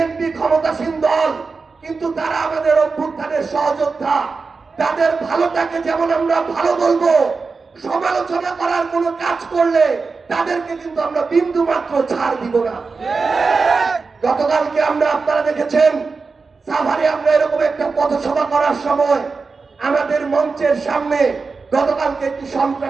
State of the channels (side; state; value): left; quieter; 4.5 dB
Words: ক্ষমতাসীন দল, কিন্তু তারা আমাদের অভ্যুত্থানের সহযোদ্ধা। তাদের ভালোটাকে যেমন আমরা ভালো বলবো, সমালোচনা করার কোনো কাজ করলে তাদেরকে কিন্তু আমরা বিন্দু মাত্র ছাড় দিব না। গতকালকে আপনারা দেখেছেন সাভারে আমরা এরকম একটা পথসভা করার সময় আমাদের মঞ্চের সামনে গতকালকে একটি